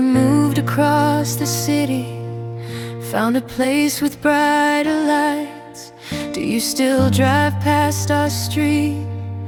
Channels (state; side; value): identical; both; correlation 1.00